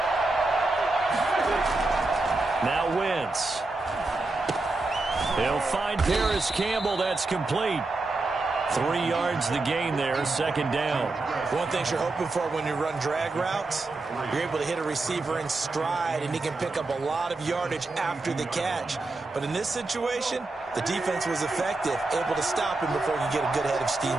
Now Wentz. He'll find Paris Campbell. That's complete. 3 yards the gain there, second down. One thing you're hoping for when you run drag routes, you're able to hit a receiver in stride, and he can pick up a lot of yardage after the catch. But in this situation, the defense was effective, able to stop him before he could get a good head of steam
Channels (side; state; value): left; quieter; 3.3 dB